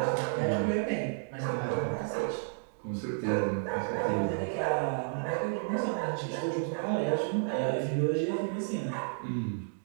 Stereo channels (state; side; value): silent; left; digital silence